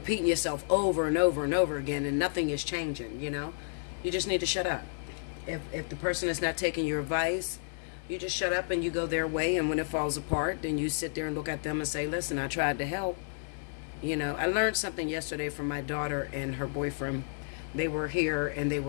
yourself over and over and over again and nothing is changing, You just need to shut up. If the person is not taking your advice, you just shut up and you go their way, and when it falls apart, then you sit there and look at them and say, listen, I tried to help. I learned something yesterday from my daughter and her boyfriend. They were here and they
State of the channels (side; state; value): right; silent; digital silence